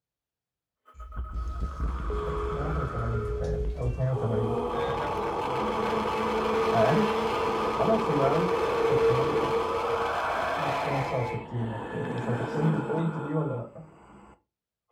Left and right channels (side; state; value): both; identical; correlation 1.00